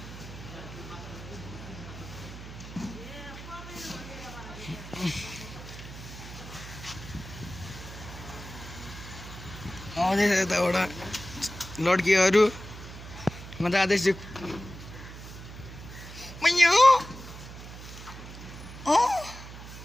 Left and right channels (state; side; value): noise; right; hum, 13 dB below the sound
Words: आउँदैछ यताबाट लड्कीहरू म जाँदैछु मैयो